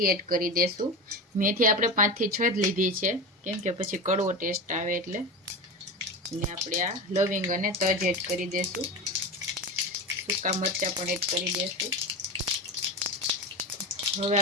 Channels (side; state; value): both; normal; correlation 0.24